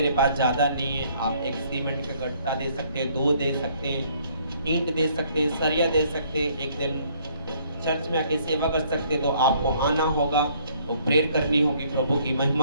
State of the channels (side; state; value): both; inverted; correlation -0.63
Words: पास ज़्यादा नहीं है। आप एक सीमेंट का गट्टा दे सकते हैं, 2 दे सकते हैं, ईंट दे सकते हैं, सरिया दे सकते हैं। एक दिन चर्च में आके सेवा कर सकते हैं। तो आपको आना होगा, वो प्रेयर करनी होगी प्रभु की